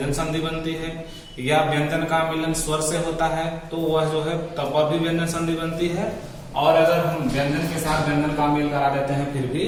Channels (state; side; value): identical; both; correlation 1.00